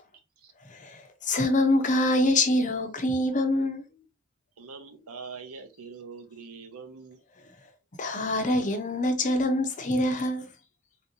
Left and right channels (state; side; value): normal; both; correlation 0.55